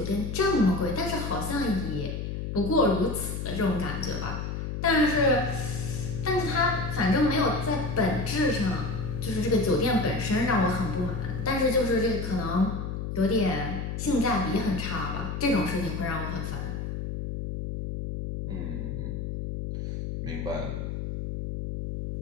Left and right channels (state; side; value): noise; left; hum, 4 dB below the sound